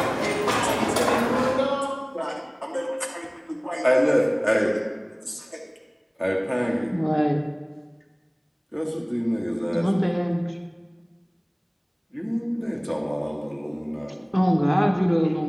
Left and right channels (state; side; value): identical; both; correlation 1.00